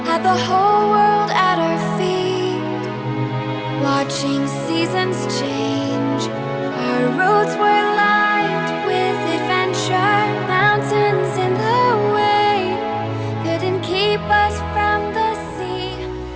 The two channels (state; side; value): identical; both; correlation 1.00